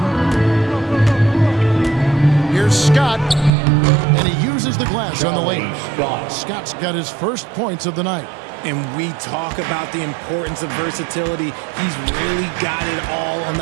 Here's Scott. And he uses the glass on the lane. Scott's got his first points of the night. And we talk about the importance of versatility. He's really got it all on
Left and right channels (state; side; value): drops out; left; at 3.5 s